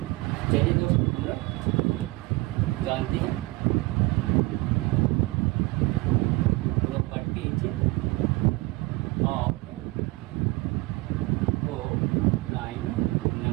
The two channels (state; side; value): quieter; left; 22.3 dB